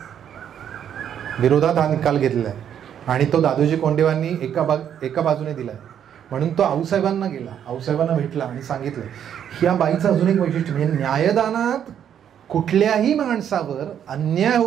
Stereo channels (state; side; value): quieter; left; 9.2 dB